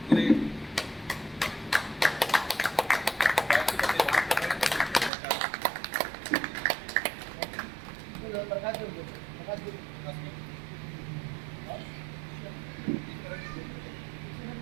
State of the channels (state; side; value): drops out; left; at 5.1 s